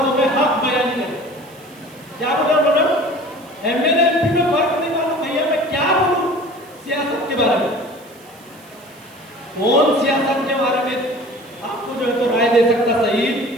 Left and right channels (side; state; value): right; noise; hiss, 25 dB below the sound